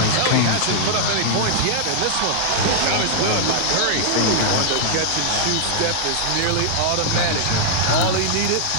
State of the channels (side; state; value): both; different; correlation -0.01